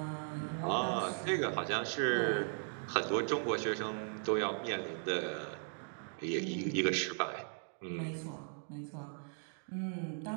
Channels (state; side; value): silent; left; 53 dB below the other